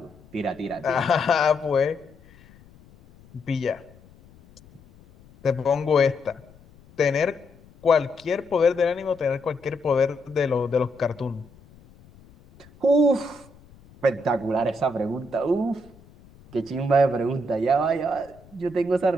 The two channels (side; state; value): left; noise; rumble, 25 dB below the sound